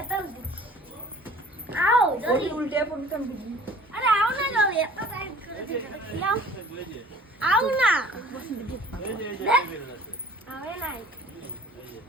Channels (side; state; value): both; normal; correlation 0.50